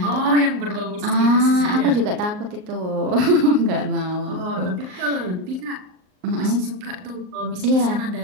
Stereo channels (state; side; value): late; left; 38 ms